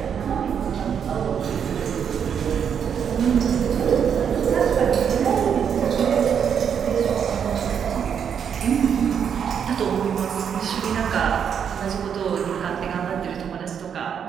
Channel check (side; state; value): left; quieter; 7.8 dB